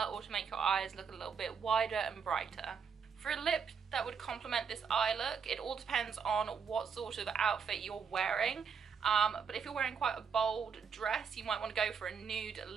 or to make your eyes look a little bit wider and brighter. For a lip that would complement this eye look, it all depends on what sort of outfit you're wearing. But if you're wearing quite a bold dress, you might want to go for a nude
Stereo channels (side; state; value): left; quieter; 6.4 dB